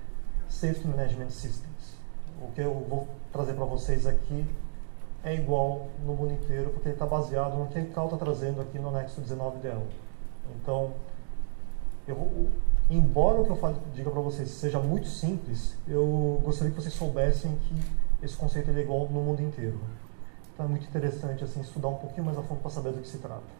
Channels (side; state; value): left; silent; digital silence